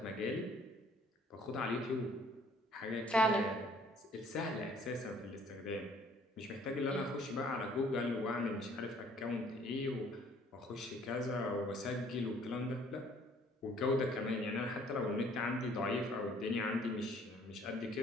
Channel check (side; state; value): both; normal; correlation 0.58